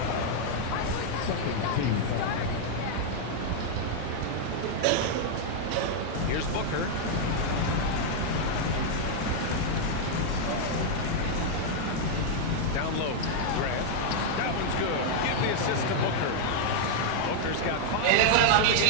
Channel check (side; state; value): both; different; correlation 0.00